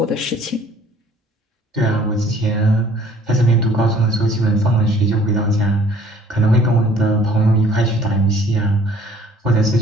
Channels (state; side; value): normal; both; correlation 0.55